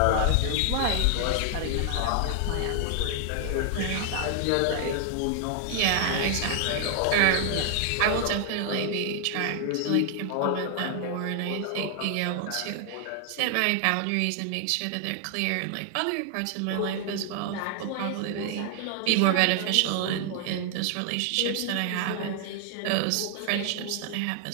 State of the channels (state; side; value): different; both; correlation 0.00